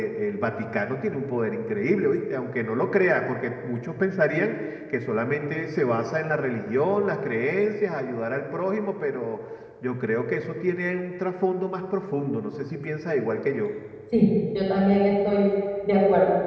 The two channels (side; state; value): both; identical; correlation 1.00